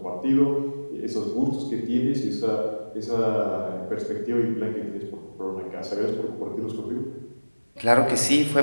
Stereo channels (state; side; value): inverted; both; correlation -1.00